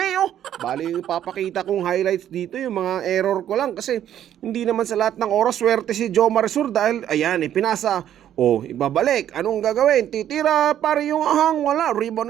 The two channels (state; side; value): quieter; left; 10.8 dB